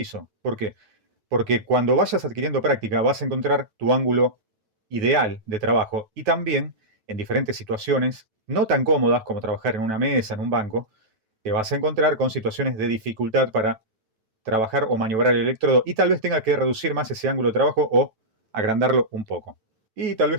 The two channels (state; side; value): late; left; 9.2 ms